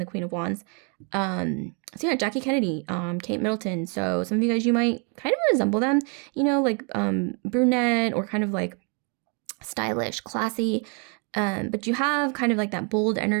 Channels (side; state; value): left; quieter; 37.4 dB